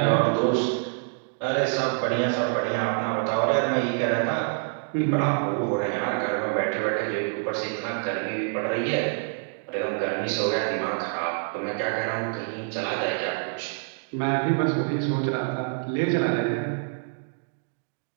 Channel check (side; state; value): left; silent; 61 dB below the other